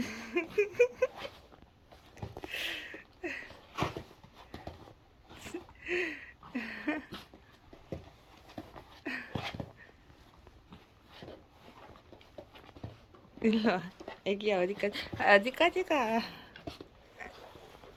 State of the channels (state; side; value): identical; both; correlation 1.00